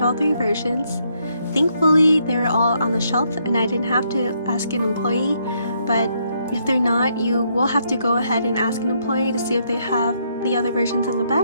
all 3 versions. Thankfully they were all on the shelf and I didn't have to ask an employee, but if they're not, you will have to go ahead and ask an employee to see if they have the other versions in the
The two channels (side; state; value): both; inverted; correlation -0.74